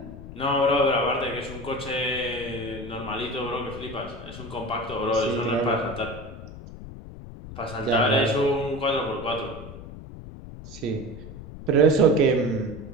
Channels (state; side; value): noise; left; rumble, 13 dB below the sound